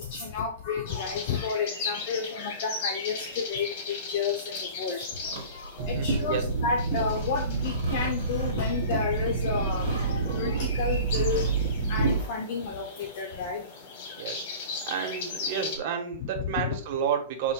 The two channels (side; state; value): both; inverted; correlation -0.38